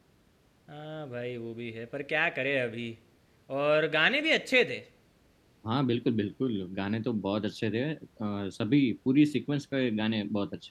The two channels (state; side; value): identical; both; correlation 1.00